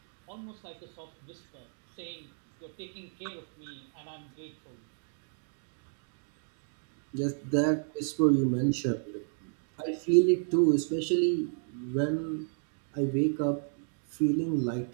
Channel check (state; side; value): silent; left; 56 dB below the other